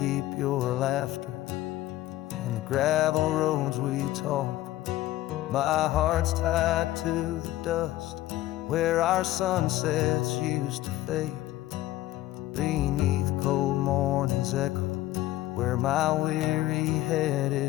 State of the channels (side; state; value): right; quieter; 15.6 dB